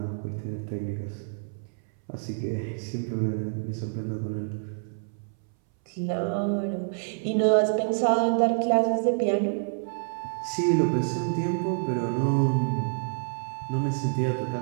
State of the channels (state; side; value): silent; left; 60 dB below the other